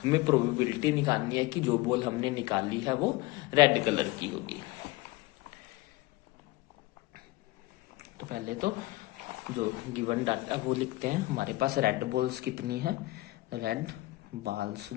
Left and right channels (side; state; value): right; quieter; 20.3 dB